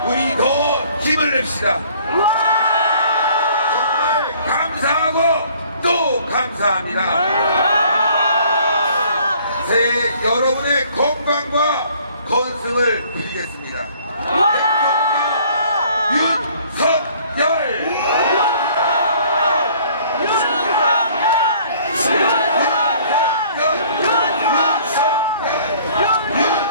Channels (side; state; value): both; inverted; correlation -0.56